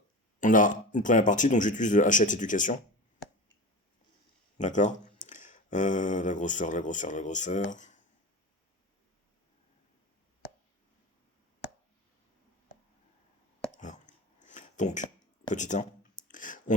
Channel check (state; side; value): normal; both; correlation 0.30